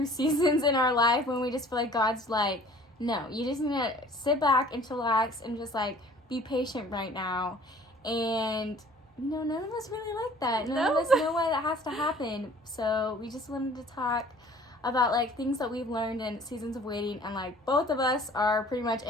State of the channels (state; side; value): normal; both; correlation 0.51